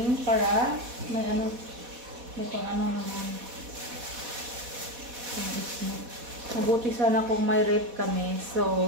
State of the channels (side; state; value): left; late; 4.1 ms